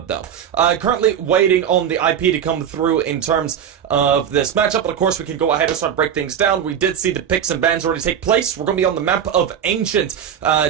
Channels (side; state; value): left; quieter; 8.8 dB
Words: though. Currently waiting on the IP to come through in terms of this matchup, but of course, we can go ahead and start to break things down. We did see the picks and bans already take place. We're going to be on the map of Ancient